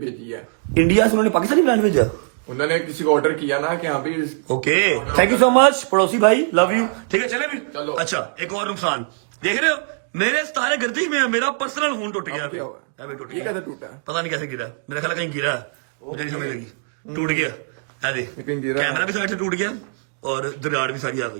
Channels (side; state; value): left; silent; digital silence